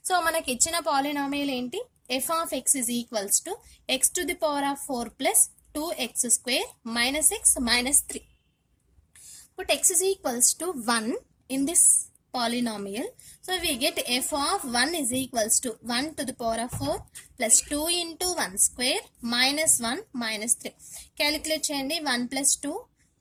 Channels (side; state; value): both; identical; correlation 1.00